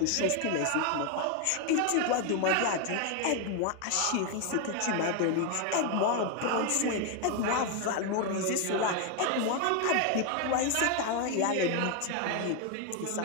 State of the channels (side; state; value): both; different; correlation 0.01